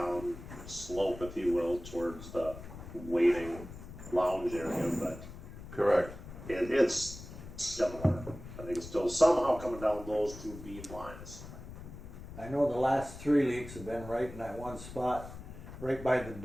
slope, if you will, towards the waiting lounge area, but Correct. it's similar. I think it's still somehow coming down those 2 beam lines. I know the last 3 leaks have been right in that one spot, right by the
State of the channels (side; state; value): left; noise; rumble, 13 dB below the sound